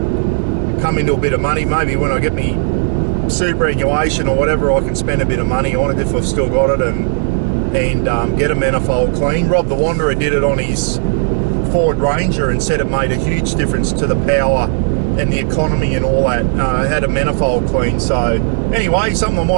come into a bit of money, maybe when I get me superannuation or whatever, I can spend a bit of money on it if I've still got it and get a manifold clean. Rob the Wanderer did it on his Ford Ranger and said it made a huge difference to the power and the economy and all that. Had a manifold clean. So anyway, something I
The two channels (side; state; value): left; silent; digital silence